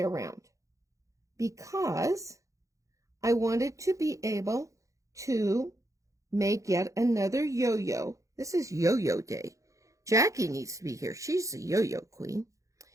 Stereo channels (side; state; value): left; late; 0.15 ms